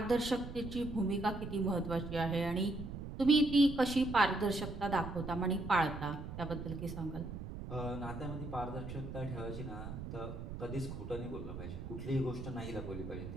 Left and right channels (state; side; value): noise; right; rumble, 8 dB below the sound